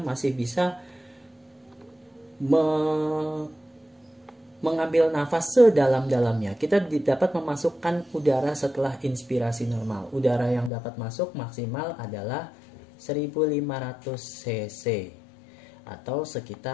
masih bisa mengambil nafas sedalam-dalamnya. Kita dapat memasukkan udara setelah inspirasi normal. Udara yang dapat masuk maksimal adalah 1500 cc atau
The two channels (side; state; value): right; drops out; at 10.7 s